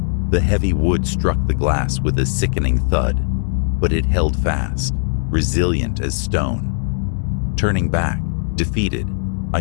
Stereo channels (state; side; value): silent; right; digital silence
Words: The heavy wood struck the glass with a sickening thud, but it held fast, resilient as stone. Turning back, defeated, I